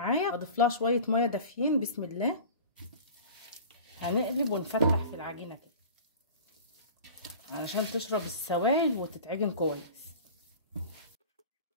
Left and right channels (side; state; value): both; inverted; correlation -0.39